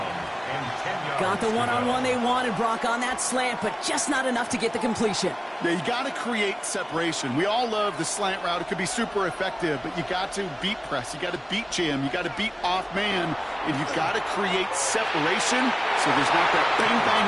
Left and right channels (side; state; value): both; identical; correlation 1.00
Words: Got the one-on-one they wanted, Brock, on that slant, but just not enough to get the completion. Yeah, you got to create separation. We all love the slant route. It could be super effective, but you got to beat press. You got to beat jam. You got to beat off man, and you've got to create separation so there's not that